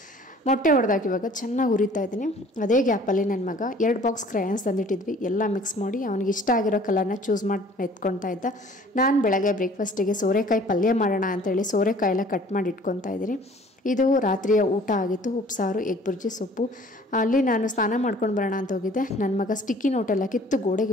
ಮೊಟ್ಟೆ ಹೊಡೆದಾಕಿ ಇವಾಗ ಚೆನ್ನಾಗಿ ಹುರಿತಾ ಇದ್ದೀನಿ. ಅದೇ ಗ್ಯಾಪಲ್ಲಿ ನನ್ನ ಮಗ 2 ಬಾಕ್ಸ್ ಕ್ರಯಾನ್ಸ್ ತಂದಿಟ್ಟಿದ್ವಿ, ಎಲ್ಲ ಮಿಕ್ಸ್ ಮಾಡಿ ಅವನಿಗೆ ಇಷ್ಟ ಆಗಿರೋ ಕಲರ್ನ ಚೂಸ್ ಮಾಡಿ ಎತ್ಕೊತಾ ಇದ್ದ. ನಾನು ಬೆಳಗ್ಗೆ ಬ್ರೇಕ್ಫಾಸ್ಟಿಗೆ ಸೋರೆಕಾಯಿ ಪಲ್ಯ ಮಾಡೋಣ ಅಂತೇಳಿ ಸೋರೆಕಾಯಿ ಎಲ್ಲ ಕಟ್ ಮಾಡಿ ಇಟ್ಕೊತಾ ಇದ್ದೀನಿ. ಇದು ರಾತ್ರಿಯ ಊಟ ಆಗಿತ್ತು. ಉಪ್ಸಾರು, ಎಗ್ ಬುರ್ಜಿ, ಸೊಪ್ಪು. ಅಲ್ಲಿ ನಾನು ಸ್ನಾನ ಮಾಡ್ಕೊಂಡು ಬರೋಣ ಅಂತ ಹೋಗಿದ್ದೆ. ನನ್ನ ಮಗ ಸ್ಟಿಕ್ಕಿ ನೋಟೆಲ್ಲ ಕಿತ್ತು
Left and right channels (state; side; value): normal; both; correlation 0.52